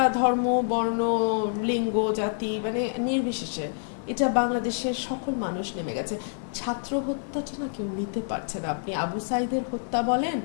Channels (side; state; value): right; silent; digital silence